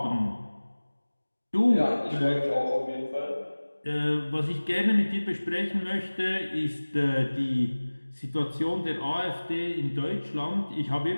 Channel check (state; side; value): inverted; both; correlation -1.00